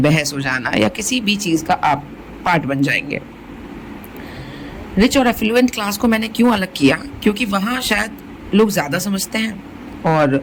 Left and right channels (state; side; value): identical; both; correlation 1.00